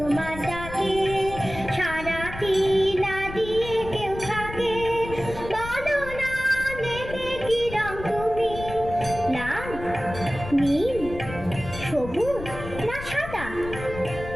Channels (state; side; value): noise; left; rumble, 11 dB below the sound